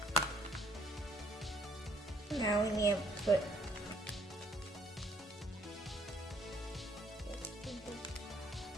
Now we need to put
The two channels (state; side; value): normal; both; correlation 0.65